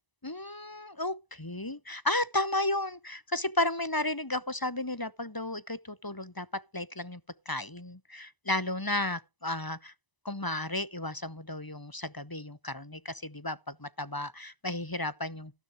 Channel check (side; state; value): right; late; 1.0 ms